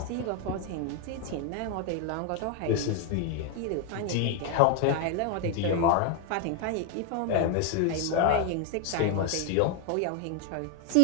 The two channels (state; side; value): different; both; correlation 0.01